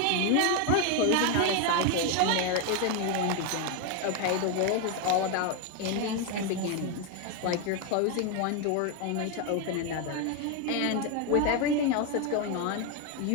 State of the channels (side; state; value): both; different; correlation 0.02